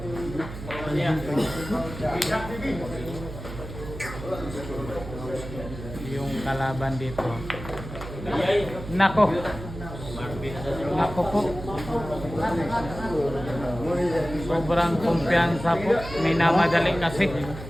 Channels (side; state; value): right; noise; hum, 11 dB below the sound